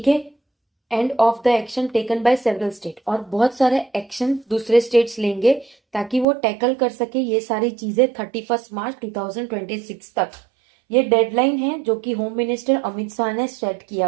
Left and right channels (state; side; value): drops out; left; at 6.2 s